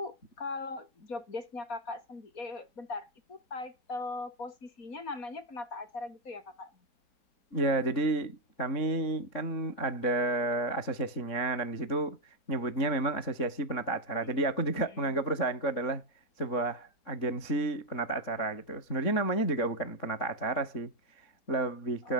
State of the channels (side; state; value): right; late; 3.7 ms